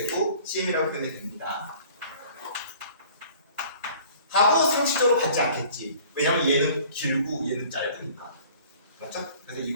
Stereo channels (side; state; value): both; inverted; correlation -0.50